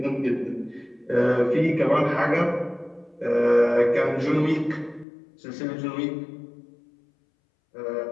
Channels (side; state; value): right; drops out; at 5.1 s